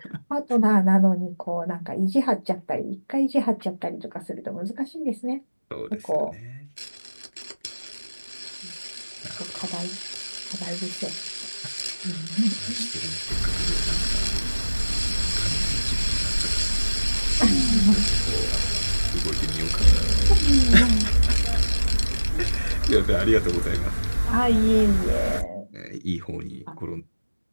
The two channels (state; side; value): inverted; both; correlation -1.00